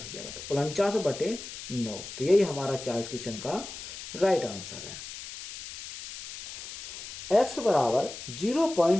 जाएगा। तो 49/9, तो यही हमारा क्या है इस क्वेश्चन का राइट आंसर है। x बराबर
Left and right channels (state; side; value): noise; left; hiss, 11 dB below the sound